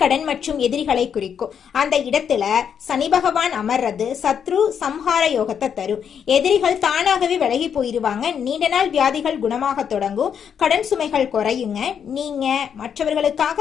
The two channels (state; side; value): quieter; right; 7.8 dB